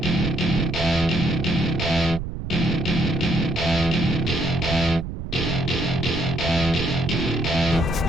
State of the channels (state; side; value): noise; right; rumble, 6 dB below the sound